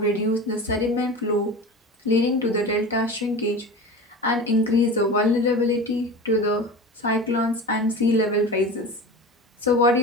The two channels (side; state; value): both; normal; correlation 0.31